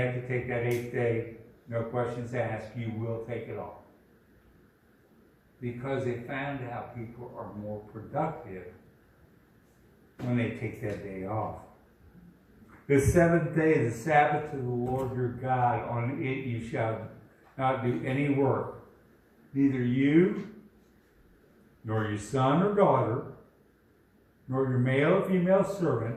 to take that 8th day, no questions asked, you will take it off. Because they found out people are more productive when they take that day off. The 7th day is the Sabbath to the Lord your God. On it you shall not do any work, neither you, nor your son or daughter, nor your male or female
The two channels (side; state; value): both; identical; correlation 1.00